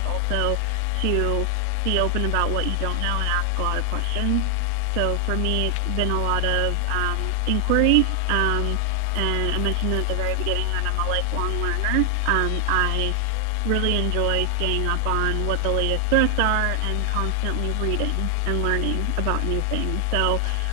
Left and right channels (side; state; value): both; different; correlation 0.00